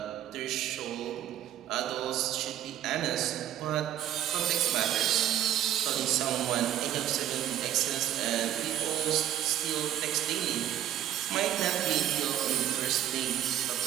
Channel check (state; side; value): quieter; left; 11.5 dB